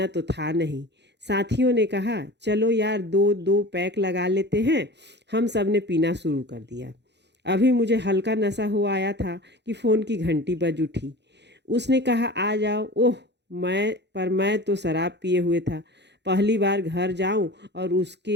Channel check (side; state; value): left; late; 0.50 ms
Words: तो था नहीं। साथियों ने कहा, चलो यार, दो दो पैक लगा लेते हैं। हम सब ने पीना शुरू कर दिया। अभी मुझे हल्का नशा हो आया था कि फ़ोन की घंटी बज उठी। उसने कहा, आ जाओ। ओह, मैं तो शराब पिए हुए था। पहली बार घर जाऊं और